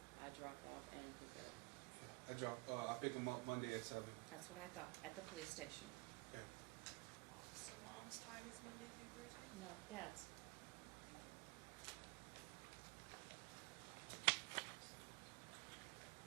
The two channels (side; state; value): left; quieter; 26.4 dB